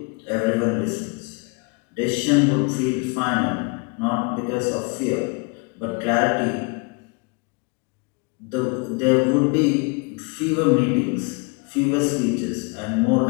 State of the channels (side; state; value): right; quieter; 31.5 dB